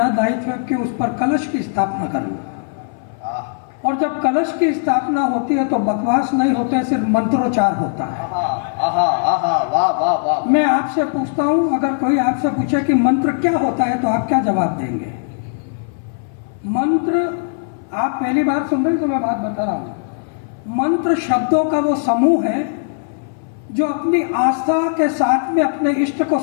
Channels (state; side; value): silent; right; 58 dB below the other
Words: दायित्व है कि उस पर कलश की स्थापना करूं। और जब कलश की स्थापना होती है तो बकवास नहीं होते, सिर्फ मंत्रोच्चार होता है। मैं आपसे पूछता हूं, अगर कोई आपसे पूछे कि मंत्र क्या होता है तो आप क्या जवाब देंगे? मंत्र, आप पहली बार सुन रहे तो मैं बात बता रहा हूं। मंत्र शब्दों का वो समूह है जो अपनी आस्था के साथ में अपने इष्ट को